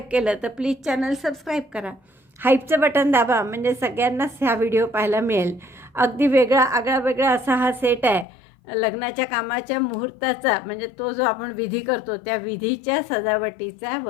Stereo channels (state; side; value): drops out; right; at 8.2 s